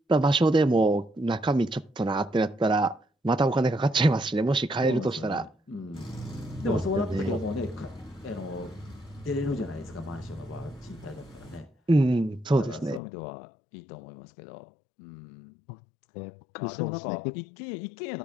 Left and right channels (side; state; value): right; drops out; at 13.0 s